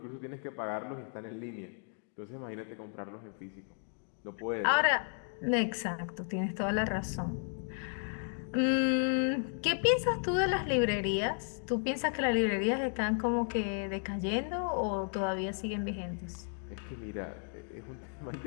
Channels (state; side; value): silent; right; 55 dB below the other